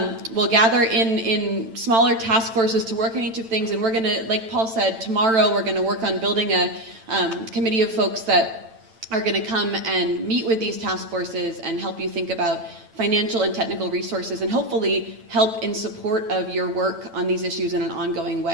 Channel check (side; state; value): left; late; 9.0 ms